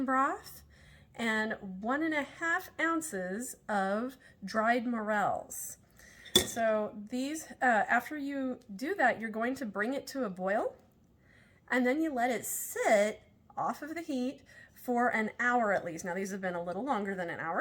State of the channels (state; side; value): identical; both; correlation 1.00